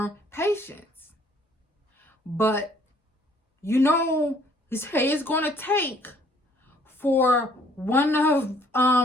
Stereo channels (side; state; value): both; normal; correlation 0.61